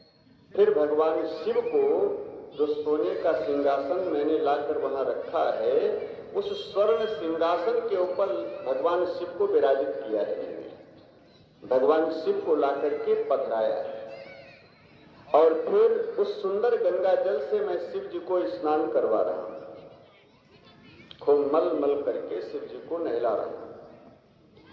फिर भगवान शिव को जो सोने का सिंहासन मैंने लाकर वहां रखा है, उस स्वर्ण सिंहासन के ऊपर भगवान शिव को विराजित किया है मैंने। भगवान शिव को लाकर के पधराया है, और फिर उस सुंदर गंगा जल से मैं शिव जी को स्नान करवा रहा हूं। खूब मल मल करके शिव जी को नहला रहा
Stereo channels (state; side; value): identical; both; correlation 1.00